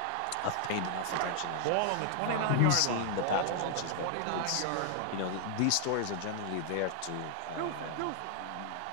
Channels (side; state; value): both; different; correlation 0.00